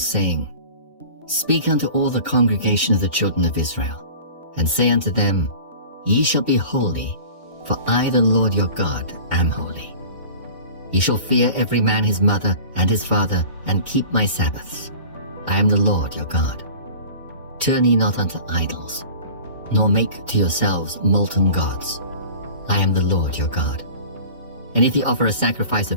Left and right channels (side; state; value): both; inverted; correlation -0.40